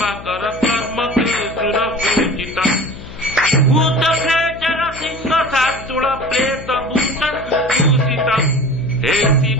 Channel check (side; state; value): left; noise; hum, 15 dB below the sound